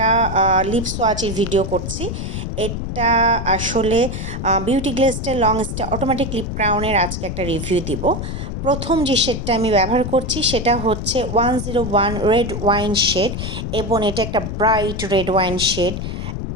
লিপ সোয়াচের ভিডিও করছি। এটা আসলে বিউটি গ্লেজের লং স্টে অটোমেটিক লিপ ক্রাউনের আজকে একটা রিভিউ দিব। প্রথম যে শেডটা আমি ব্যবহার করছি সেটা হচ্ছে 101 রেড ওয়াইন শেড এবং এটা একটা ব্রাইট রেড ওয়াইন শেড,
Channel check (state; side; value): noise; left; rumble, 5 dB below the sound